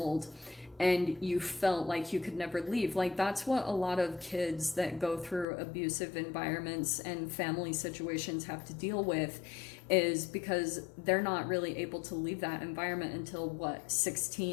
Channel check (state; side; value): drops out; right; at 5.5 s